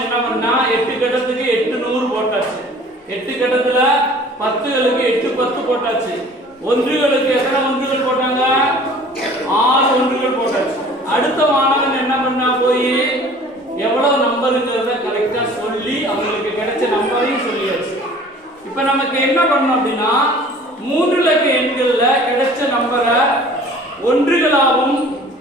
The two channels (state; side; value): normal; both; correlation 0.48